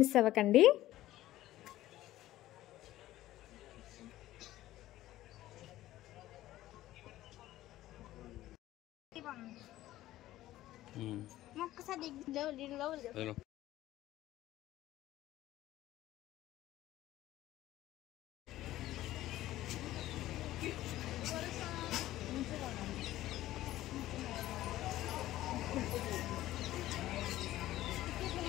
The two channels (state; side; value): quieter; right; 15.0 dB